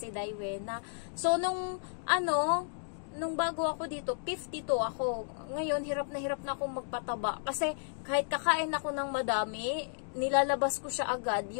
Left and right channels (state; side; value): silent; right; digital silence